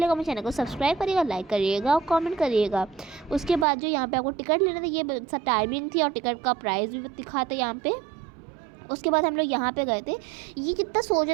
मेरे चैनल को सब्सक्राइब करिएगा, लाइक करिएगा और कमेंट करिएगा। उसके बाद जो यहाँ पे आपको टिकट लेना था, ये टाइमिंग थी और टिकट का प्राइस भी दिखाता यहाँ पे। उसके बाद हम लोग यहाँ पे गए थे, ये कितना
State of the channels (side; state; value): left; drops out; at 3.7 s